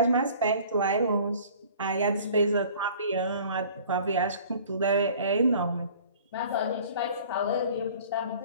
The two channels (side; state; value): both; inverted; correlation -0.49